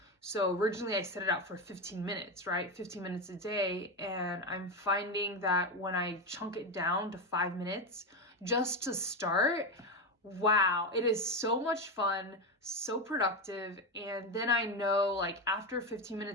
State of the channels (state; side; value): normal; both; correlation 0.14